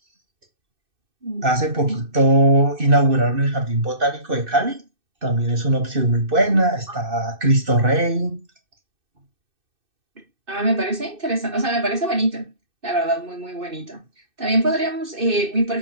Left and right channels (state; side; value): late; left; 2.6 ms